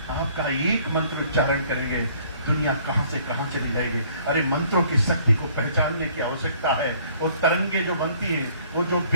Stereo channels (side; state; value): both; inverted; correlation -0.59